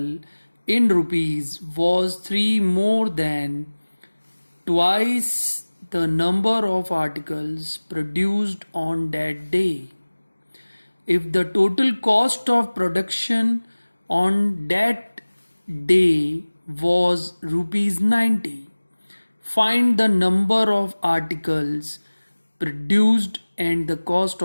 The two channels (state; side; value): inverted; both; correlation -1.00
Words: in rupees was 3 more than twice the number of articles produced on that day. If the total cost of production on that day was rupees 90, find the number of articles produced and the cost